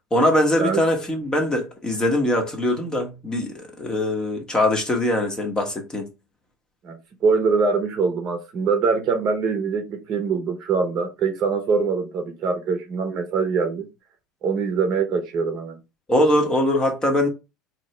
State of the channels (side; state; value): both; normal; correlation 0.56